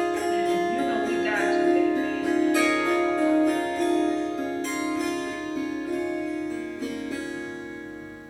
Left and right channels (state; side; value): identical; both; correlation 1.00